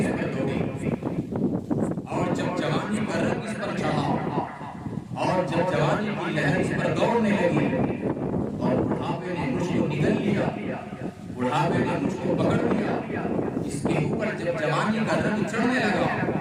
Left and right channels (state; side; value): identical; both; correlation 1.00